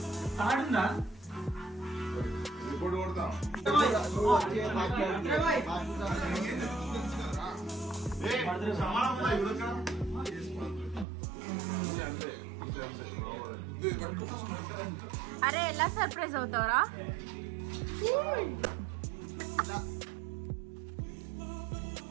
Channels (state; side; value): drops out; left; at 11.1 s